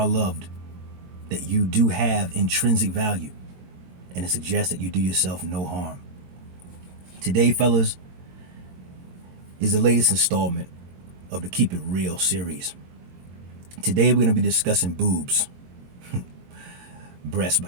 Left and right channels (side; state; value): left; late; 22 ms